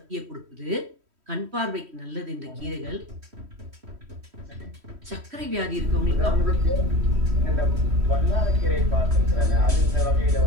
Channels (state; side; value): late; left; 3.1 ms